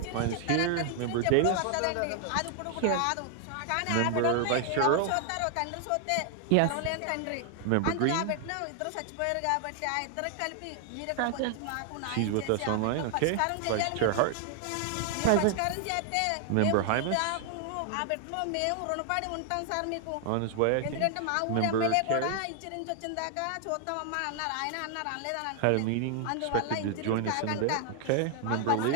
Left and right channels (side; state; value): both; different; correlation 0.00